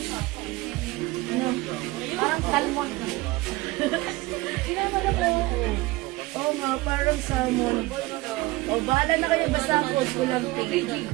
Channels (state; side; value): quieter; left; 20.5 dB